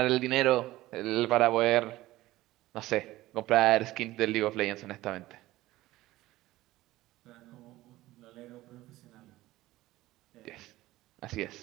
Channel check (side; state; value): left; quieter; 17.0 dB